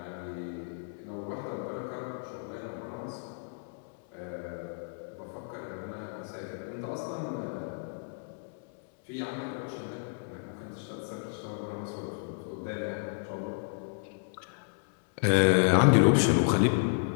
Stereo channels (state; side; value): silent; right; digital silence